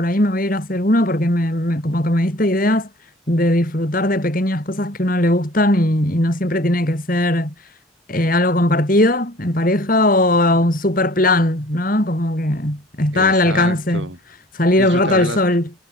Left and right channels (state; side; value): normal; both; correlation 0.49